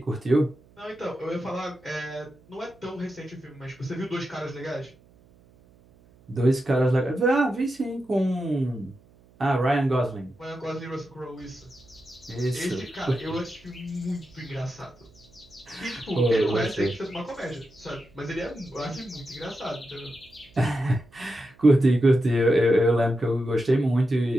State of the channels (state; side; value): noise; right; hum, 28 dB below the sound